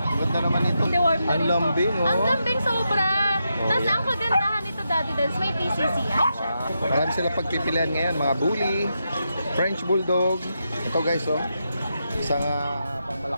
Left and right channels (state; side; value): inverted; both; correlation -0.85